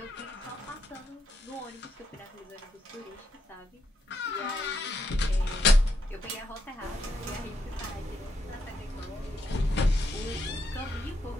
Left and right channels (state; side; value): normal; both; correlation 0.78